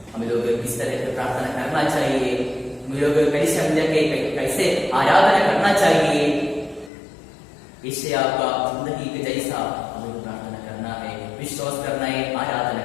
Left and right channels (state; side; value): drops out; right; at 6.9 s